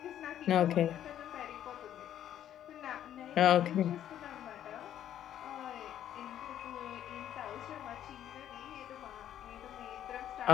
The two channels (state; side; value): quieter; right; 10.9 dB